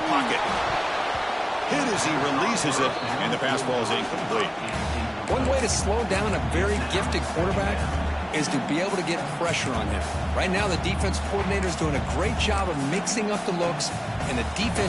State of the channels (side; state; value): both; identical; correlation 1.00